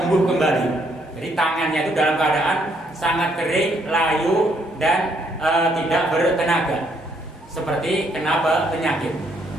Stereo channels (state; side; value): normal; both; correlation 0.71